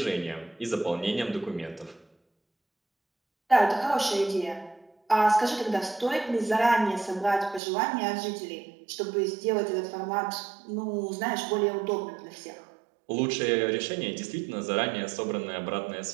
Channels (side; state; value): left; drops out; at 7.6 s